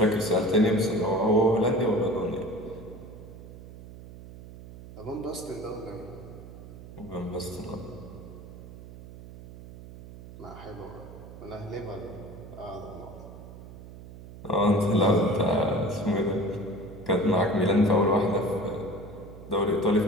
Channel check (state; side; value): noise; right; hum, 15 dB below the sound